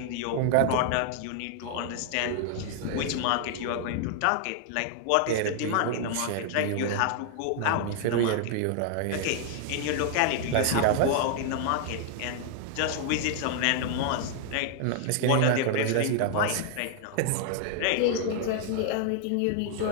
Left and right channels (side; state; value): both; different; correlation 0.00